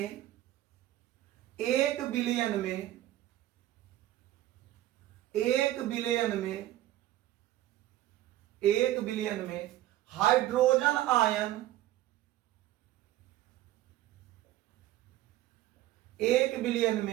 1 बिलियन में, 1 बिलियन में, 1 बिलियन में हाइड्रोजन आयन, 1 बिलियन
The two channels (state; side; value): quieter; left; 14.5 dB